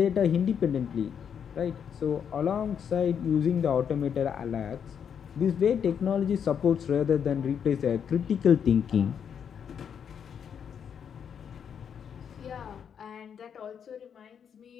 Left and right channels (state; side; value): quieter; right; 7.8 dB